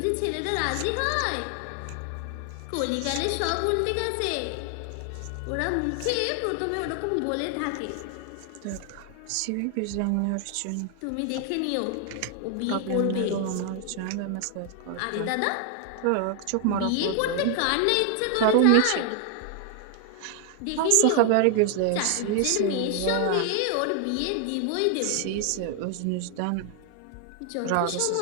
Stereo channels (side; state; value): both; different; correlation 0.00